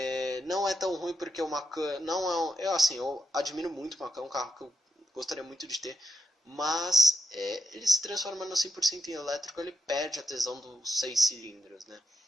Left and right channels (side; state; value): both; normal; correlation 0.84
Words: Não é tão ruim porque o Macan não é eu admiro muito o Macan, é um carro que eu gostaria muito de ter, mas ele se transformando 100% em elétrico, ele perde a tesão dos 6 cilindros, né?